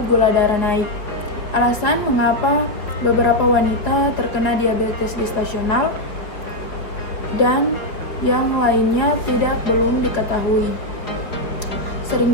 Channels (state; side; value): late; right; 4.6 ms